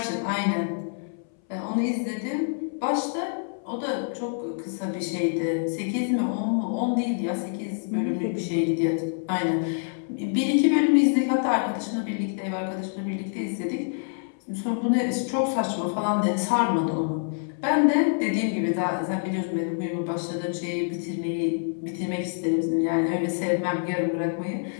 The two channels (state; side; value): silent; right; 61 dB below the other